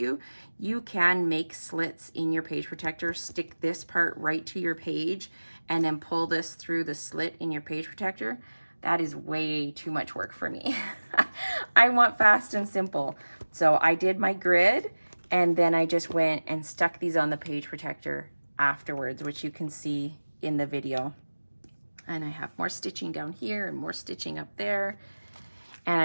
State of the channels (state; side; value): inverted; both; correlation -1.00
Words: you can make slits in your page protector, stick this part right to your page, and then pull this through the slit in your page protector. That is way too much work for me. I want fast and simple. So I did my grid, and then I just went and stuck these on the page protector afterwards, which you can see in the video. And I have more stitching down here and more stitching up there. And